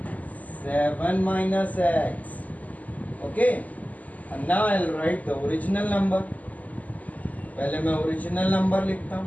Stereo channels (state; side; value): late; right; 0.076 ms